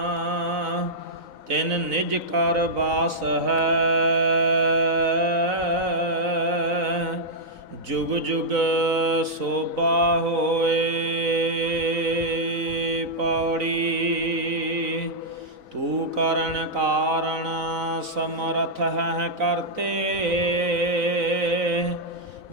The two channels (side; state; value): left; late; 3.9 ms